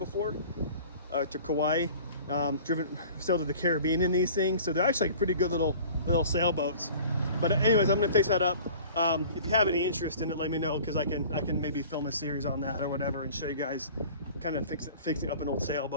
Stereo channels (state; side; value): inverted; both; correlation -0.45